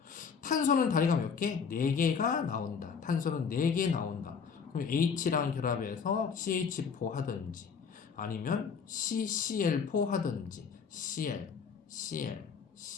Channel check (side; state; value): right; quieter; 6.2 dB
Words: 탄소는 다리가 몇 개? 4개가 나온다. 탄소는 4개 나온다. 그럼 H랑 결합해서 CH4 하든지, 아니면 CCl4 하든지, Cl, Cl,